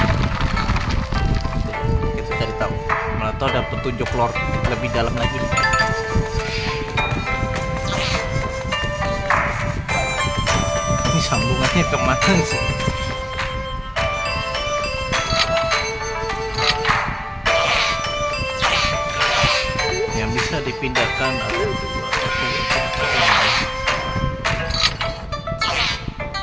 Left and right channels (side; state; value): both; identical; correlation 1.00